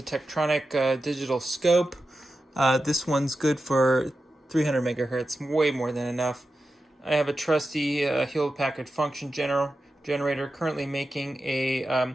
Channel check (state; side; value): normal; both; correlation 0.91